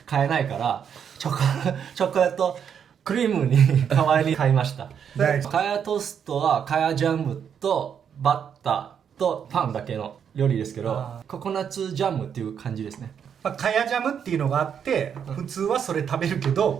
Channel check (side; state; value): left; quieter; 7.9 dB